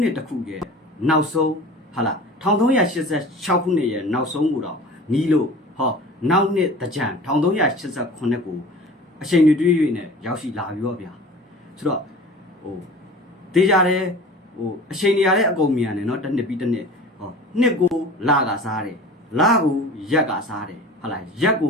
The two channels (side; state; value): both; normal; correlation 0.40